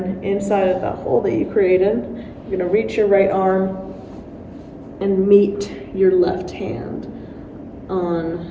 inside of that hole that you created, you're going to reach your right arm and meet your left hand on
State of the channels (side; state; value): both; identical; correlation 1.00